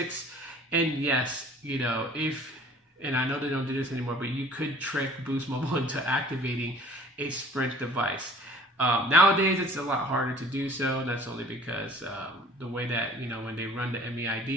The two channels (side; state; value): both; normal; correlation 0.50